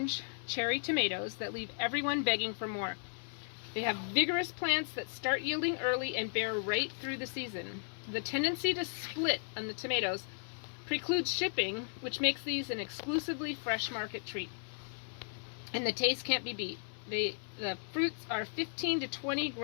cherry tomatoes that leave everyone begging for more. They have vigorous plants that start yielding early and bear right through the season. The tendency to split on the tomatoes precludes shipping, which makes these an exclusively fresh market treat. And the taste can't be beat. The fruits are 15 to 20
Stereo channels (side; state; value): right; silent; 54 dB below the other